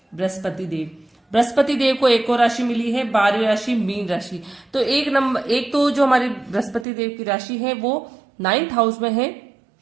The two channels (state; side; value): drops out; left; at 6.9 s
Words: बृहस्पति देव। बृहस्पति देव को एक और राशि मिली है, 12वीं राशि मीन राशि। तो एक तो जो हमारी बृहस्पति देव की राशि है वो 9th हाउस में है,